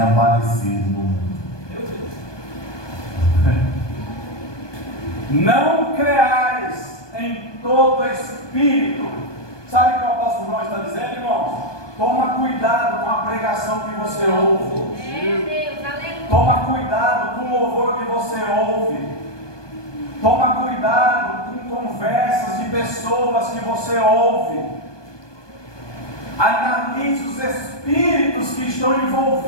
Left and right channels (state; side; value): late; right; 1.2 ms